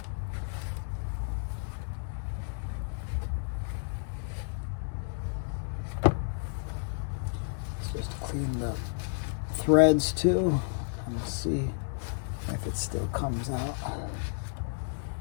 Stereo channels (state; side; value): silent; right; digital silence